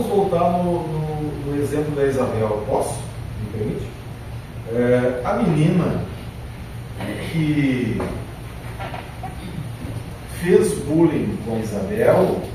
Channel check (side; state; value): both; identical; correlation 1.00